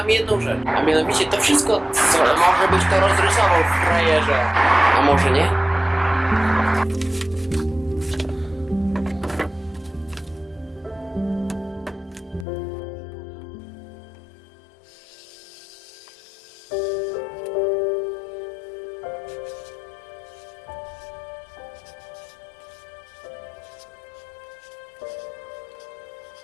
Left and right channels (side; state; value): right; drops out; at 12.5 s